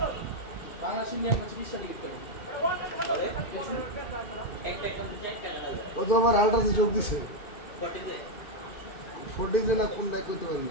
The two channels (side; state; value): right; late; 2.5 ms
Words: বাংলাদেশ ইন্ডিয়ান ম্যাচ 20 টা টিকিট করে একটা কোন চারটা লাগা ও তো আমার আলট্রাসে যোগ দিছে, কটে যে 40 জন না কোনটা করতে পারি